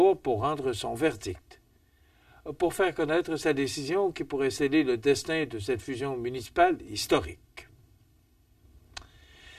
pour rendre son verdict. Pour faire connaître sa décision qui pourrait sceller le destin de cette fusion municipale historique.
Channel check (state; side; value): identical; both; correlation 1.00